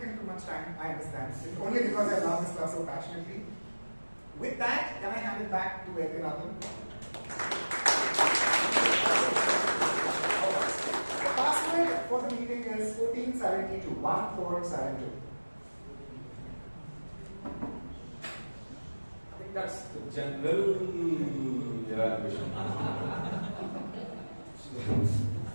too much time, I understand. It's only because I love this class so passionately. With that, can I hand it back to Vaidyanathan? The password for the meeting is 1472, 1472. I think that's the general evaluation.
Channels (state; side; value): inverted; both; correlation -1.00